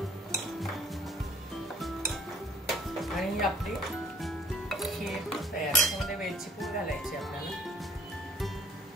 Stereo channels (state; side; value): normal; both; correlation 0.58